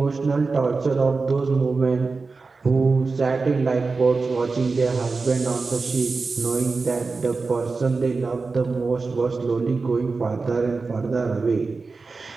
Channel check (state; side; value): quieter; left; 4.1 dB